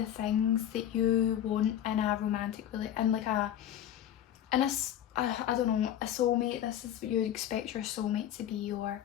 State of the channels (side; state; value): right; quieter; 10.8 dB